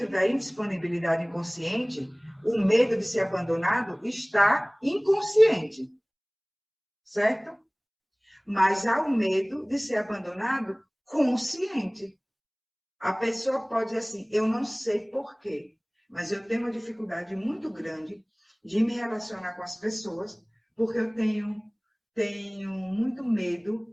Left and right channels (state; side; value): identical; both; correlation 1.00